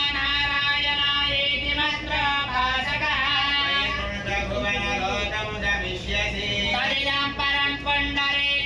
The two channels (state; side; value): identical; both; correlation 1.00